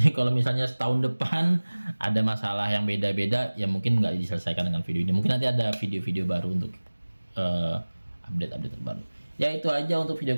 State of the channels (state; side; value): inverted; both; correlation -1.00